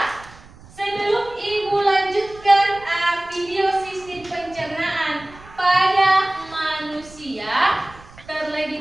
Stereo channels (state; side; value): noise; right; rumble, 22 dB below the sound